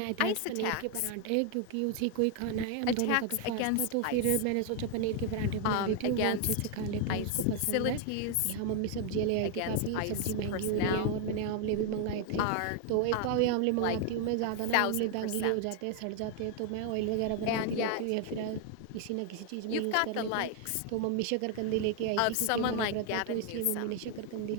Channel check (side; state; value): both; different; correlation 0.00